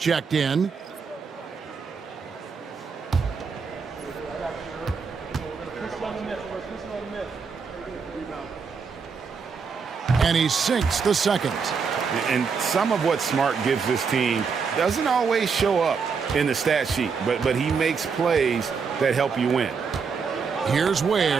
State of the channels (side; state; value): left; quieter; 5.6 dB